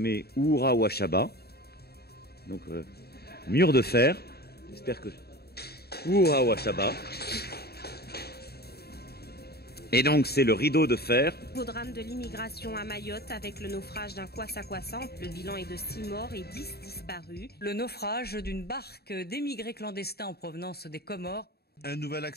Oura Wachaba. Donc, mur de fer. J'espère que... Oura Wachaba. Et donc, c'est le rideau de fer. Au drame de l'immigration à Mayotte avec le naufrage d'un kwassa-kwassa. Le bilan est de 6 morts et 10 disparus. Le naufrage d'une barque d'émigrés clandestins en provenance des Comores. Un nouvel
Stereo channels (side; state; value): right; late; 0.46 ms